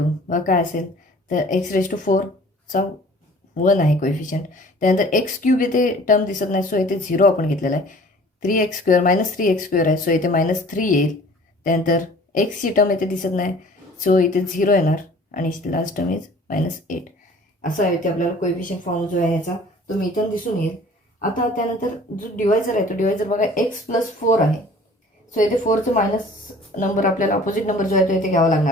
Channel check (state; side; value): normal; both; correlation 0.49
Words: बघा काय असेल तर x⁴ चा 1 आहे कोएफिशियंट. त्यानंतर x क्यूब इथे टर्म दिसत नाही सो इथे 0 आपण घेतलेला आहे. 3x स्क्वेअर -3x स्क्वेअर आहे सो इथे -3 येईल. त्यानंतर एक्सची टर्म इथे दिसत नाही सो इथे 0 येणार आणि लास्ट टर्म इज -8. असं आहे इथे आपल्याला कोएफिशियंट फॉर्म जो आहे ह्याचा तो मिथून दिसून येईल. आता त्यानंतर जो डिवायझर आहे तो डिवायझर बघा x + 4 आहे सो इथे 4चं मायनस नंबर आपल्याला अपोजिट नंबर जो आहे तो इथे घ्यावा